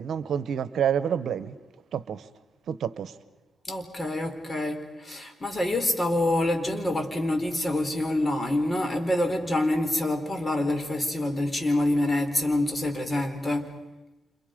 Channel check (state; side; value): normal; both; correlation 0.86